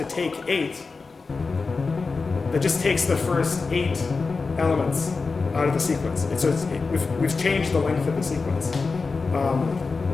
take 8, that just takes the first 8 elements out of the sequence. We've changed the length of the sequence.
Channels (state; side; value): quieter; right; 4.3 dB